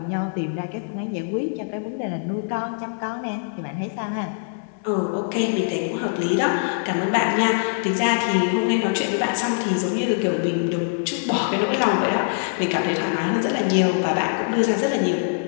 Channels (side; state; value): right; silent; 63 dB below the other